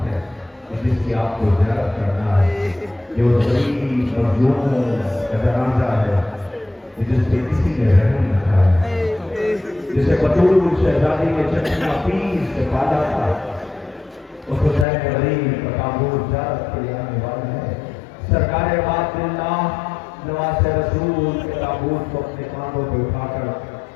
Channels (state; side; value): drops out; right; at 14.9 s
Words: ہے جس کی آپ کو زیارت کرنا ہے، جو غریب مظلوم کا جنازہ ہے جس پہ کسی نے رحم نہ کھایا، جسے بطول شہزادی کے چچا پیس سے پالا تھا، اس حسین غریب کا تابوت زیارت کے لیے آنے والا ہے۔ سرکار بات اللہ نواز رسول کے تابوت کو اپنے کاندھوں پہ اٹھا